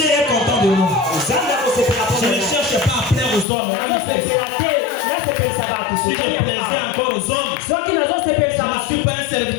est content de nous. Je ne cherche pas à plaire aux hommes. Si je plaisais encore aux hommes, je ne suis pas un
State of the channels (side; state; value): right; drops out; at 3.5 s